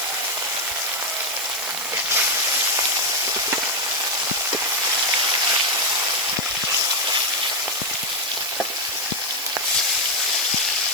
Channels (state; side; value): noise; right; hiss, 8 dB below the sound